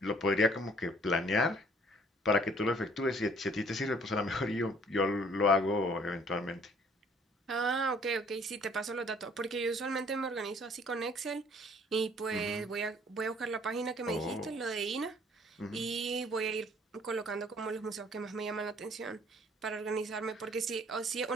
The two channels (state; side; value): normal; both; correlation 0.58